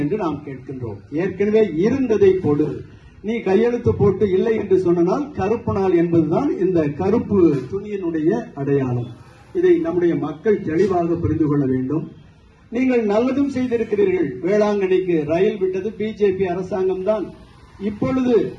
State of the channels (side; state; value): both; identical; correlation 1.00